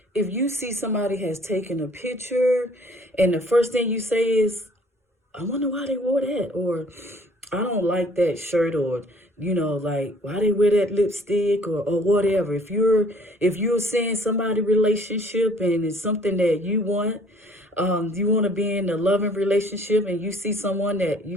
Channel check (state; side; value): normal; both; correlation 0.56